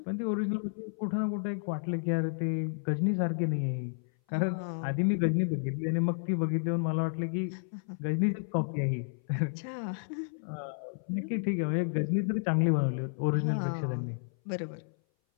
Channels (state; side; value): silent; right; 57 dB below the other